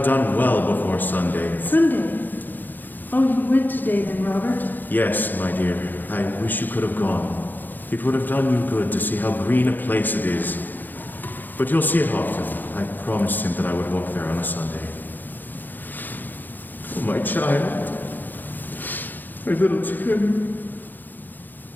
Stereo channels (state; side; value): late; right; 0.087 ms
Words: done well before Sunday. Sunday? Oh, you went today then, Robert? Yes, my dear, I wish you could have gone. It would have done you good to see how green a place it is. But you'll see it often. I promised him that I would walk there on a Sunday. Oh, my child. My little Tim.